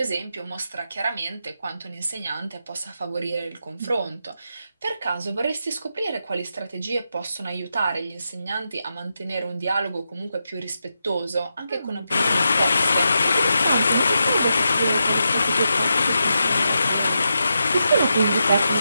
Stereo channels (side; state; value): both; inverted; correlation -0.86